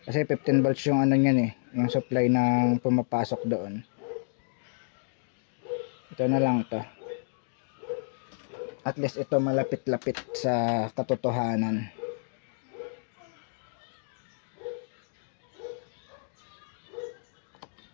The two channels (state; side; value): silent; right; digital silence